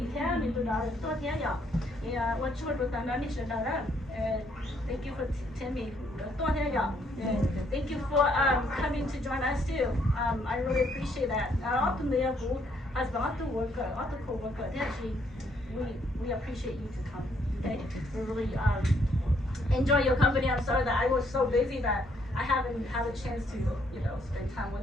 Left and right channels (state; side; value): normal; both; correlation 0.70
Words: thế mình từ đó đến tôi thế nhở thì tôi châu được tan nó đi sẽ đó thank you for telling me thank you for coming to join us too. I really appreciate that. Often the husband, often worker, often co-worker, actually, we appreciate you to come. Okay, we really enjoy your company. I'm sorry that I was so busy that I haven't had a chance to spend time